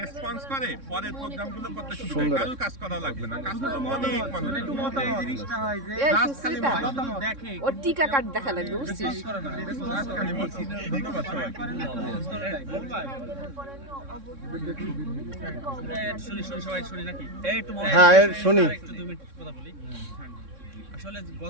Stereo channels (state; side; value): late; left; 3.6 ms